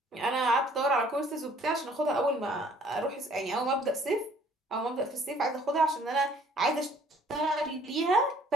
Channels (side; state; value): both; normal; correlation 0.58